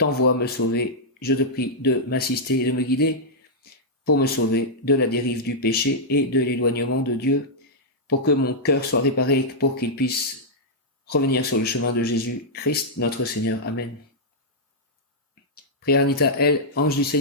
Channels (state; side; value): normal; both; correlation -0.07